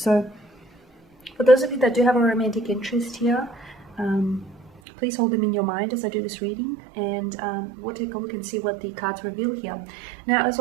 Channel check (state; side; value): drops out; left; at 4.8 s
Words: for those of you that do have a romantic interest here, please hold them in your mind as I do this reading, and we'll take a look and see what the cards reveal here. Now, as